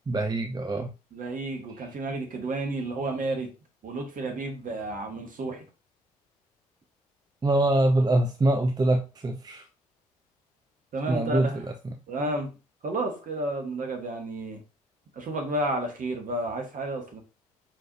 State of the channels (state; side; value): normal; both; correlation 0.70